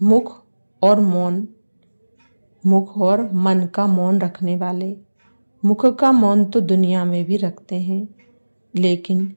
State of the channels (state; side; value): inverted; both; correlation -1.00